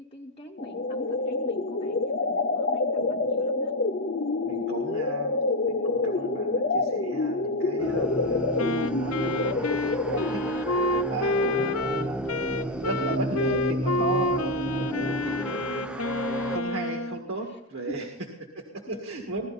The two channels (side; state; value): both; normal; correlation 0.08